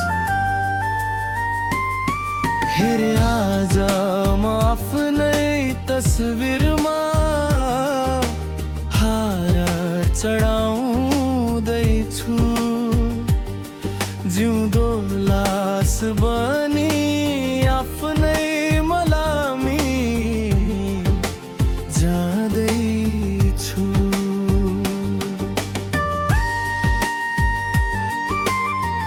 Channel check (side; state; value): both; identical; correlation 1.00